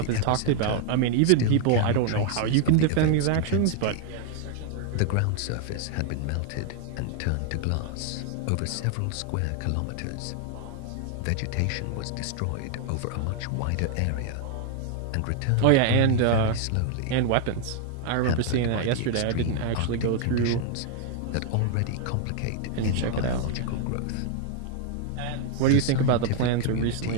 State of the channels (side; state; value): both; different; correlation 0.00